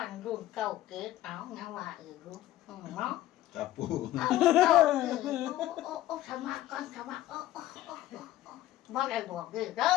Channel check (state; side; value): quieter; right; 14.5 dB